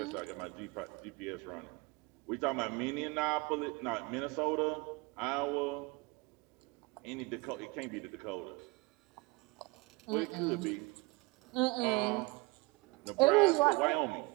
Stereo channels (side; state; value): left; quieter; 25.2 dB